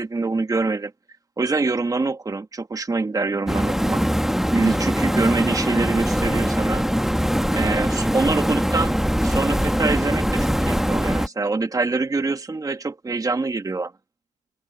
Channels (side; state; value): both; normal; correlation 0.86